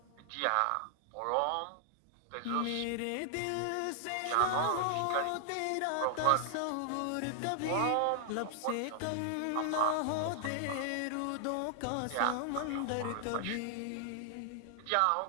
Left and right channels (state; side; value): different; both; correlation -0.01